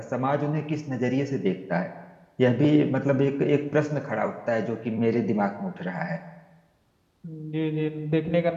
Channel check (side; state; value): both; identical; correlation 1.00